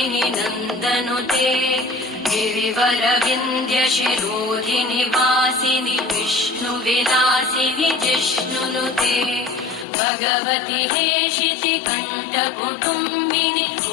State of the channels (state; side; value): drops out; right; at 9.9 s